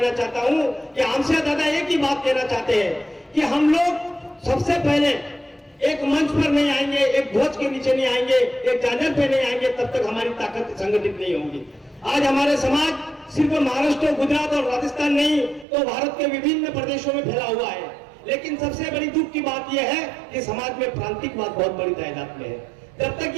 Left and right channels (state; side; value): drops out; left; at 15.7 s